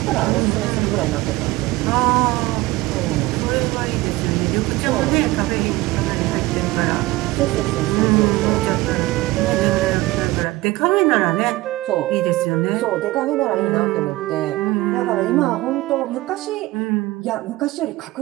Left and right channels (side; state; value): left; quieter; 19.2 dB